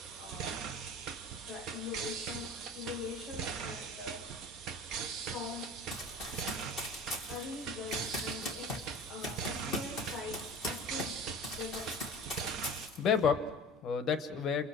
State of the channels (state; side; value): normal; both; correlation 0.38